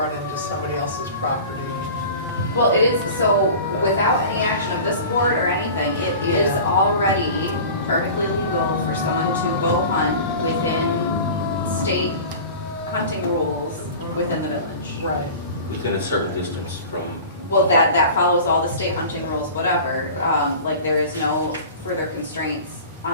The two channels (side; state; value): both; inverted; correlation -0.38